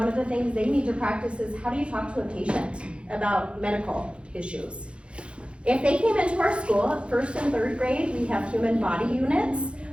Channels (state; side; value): late; left; 0.058 ms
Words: of the things they need to practice is how do you talk to a patient about medical issues. If they came into our school, 1st and 3rd grade, we have human body units,